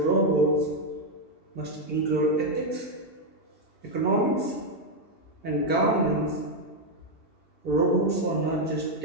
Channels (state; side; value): late; right; 2.7 ms